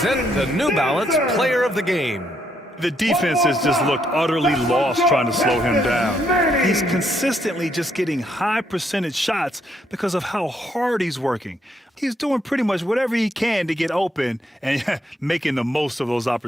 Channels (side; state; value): both; normal; correlation 0.74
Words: the New Balance Player of the Game. The defense has just looked utterly lost trying to slow him down. He's consistently just getting high percentage shots because of how hard he's working. He's doing pretty much whatever he can to get open and making the most of those